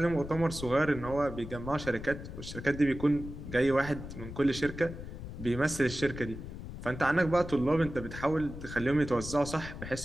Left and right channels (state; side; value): noise; left; rumble, 10 dB below the sound